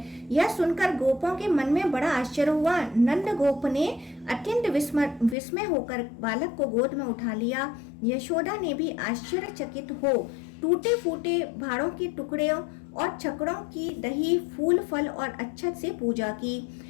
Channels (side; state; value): right; drops out; at 5.4 s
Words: यह सुनकर गोपों के मन में बड़ा आश्चर्य हुआ। नंद गोप ने अत्यंत विस्मय होकर बालक को गोद में उठा लिया। यशोदा ने भी आश्चर्यचकित हो टूटे फूटे भाड़ों के टुकड़े और छकड़ों की दही, फूल, फल और अच्छत से पूजा की।